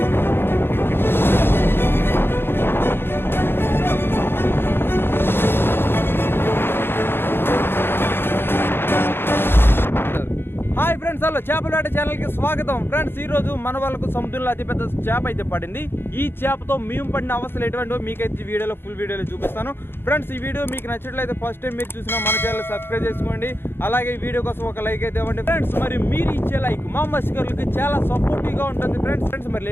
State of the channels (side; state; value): right; late; 0.11 ms